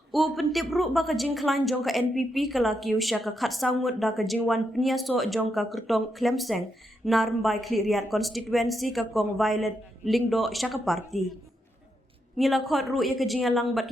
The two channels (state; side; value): normal; both; correlation 0.82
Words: U pentip ru ba ka jingklan jong ka NPP kelaki usya ka khat sangut da ka jingwan peniaso jong ka kertong Klemseng narmbai kliriat konstituensi ka kong Violet Lingdo syaka parti. Ngila khot ru ya kejingalang bat